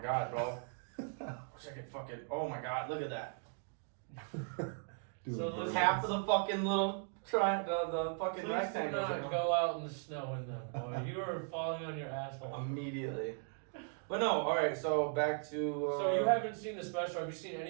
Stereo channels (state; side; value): silent; left; 53 dB below the other